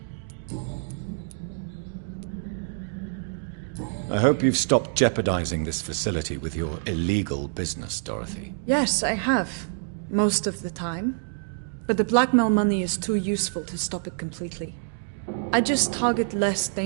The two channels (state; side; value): silent; left; digital silence